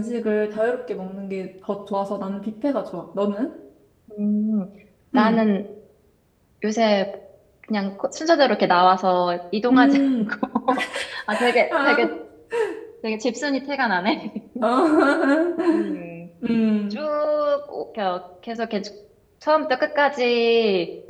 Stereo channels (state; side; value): identical; both; correlation 1.00